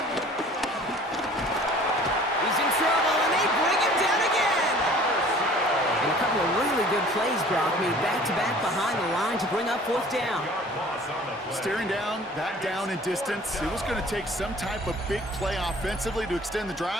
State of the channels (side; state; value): both; normal; correlation 0.49